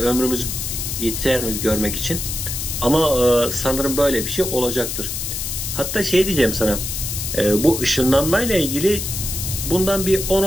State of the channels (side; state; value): left; noise; hiss, 4 dB below the sound